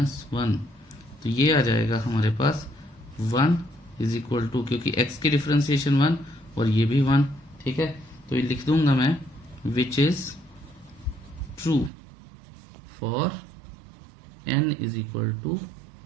1। तो ये आ जाएगा हमारे पास 1 इज इक्वल टू, क्योंकि x की डिफ्रेंसिएशन 1 और ये भी 1। ठीक है, तो ये लिख दूंगा मैं which is true for n is equal to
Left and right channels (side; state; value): left; drops out; at 11.9 s